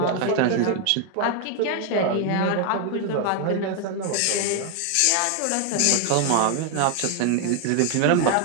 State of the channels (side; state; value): both; different; correlation 0.01